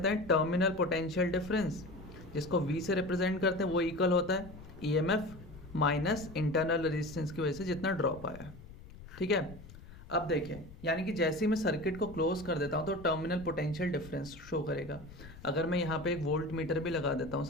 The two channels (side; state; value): left; noise; rumble, 17 dB below the sound